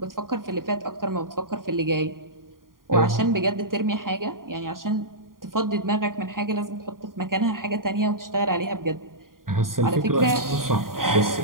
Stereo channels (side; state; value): left; late; 0.91 ms